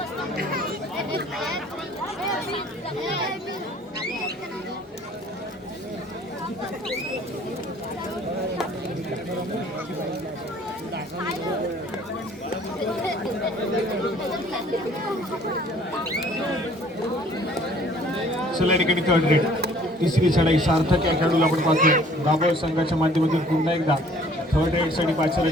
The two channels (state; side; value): normal; both; correlation 0.55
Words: चला या ठिकाणी थर्ड रेड. तिसरी चढाई सार्थक या खेळाडूला आपण पाहतोय. दाभोळ संघाच्या माध्यमातून पुन्हा एकदा थर्ड रेडसाठी